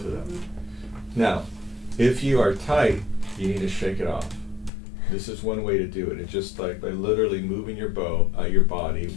of them. Now, if you are tight, you need to shake it off. This is one way to do it. It's just like by literally moving your bow, your body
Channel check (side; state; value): right; drops out; at 4.7 s